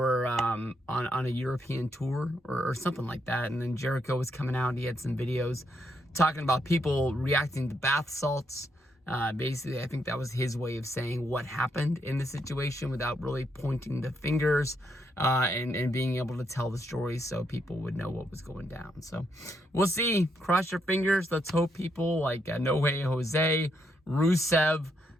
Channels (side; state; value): both; normal; correlation 0.77